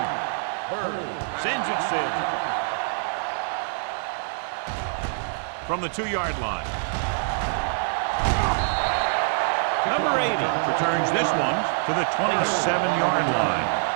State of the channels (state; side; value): silent; left; digital silence